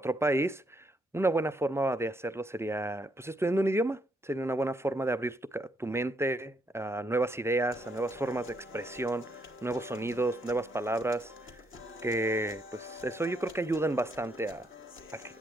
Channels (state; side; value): normal; both; correlation 0.75